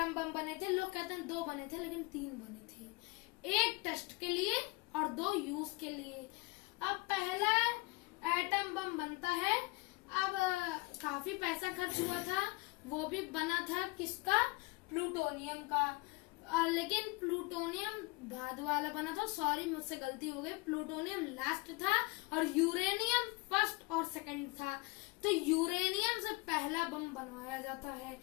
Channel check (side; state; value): right; quieter; 25.0 dB